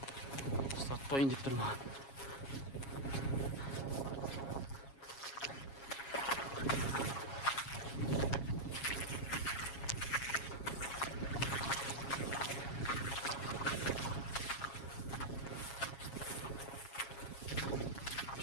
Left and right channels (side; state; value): right; late; 7.3 ms